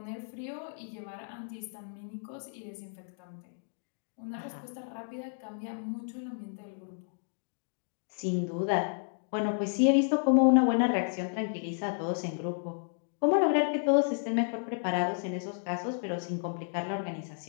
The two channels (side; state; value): right; silent; digital silence